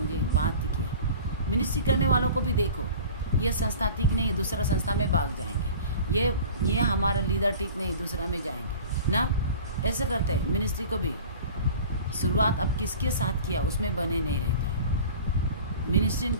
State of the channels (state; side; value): inverted; both; correlation -0.41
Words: बात किया। मिनिस्ट्री करने वालों को भी देखो, ये संस्था ठीक नहीं, दूसरा संस्था में भाग जाएंगे। ये हमारा लीडर ठीक नहीं, दूसरा में जाएंगे ना। ऐसे करते हैं। मिनिस्ट्री को भी शुरुआत अब किसके साथ किया उसमें बने नहीं रहता है। मिनिस्ट्री